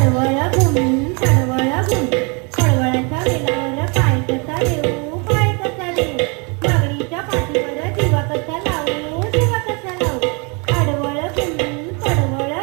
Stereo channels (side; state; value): left; quieter; 32.3 dB